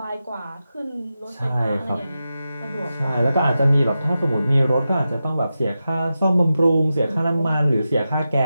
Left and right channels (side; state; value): both; inverted; correlation -0.91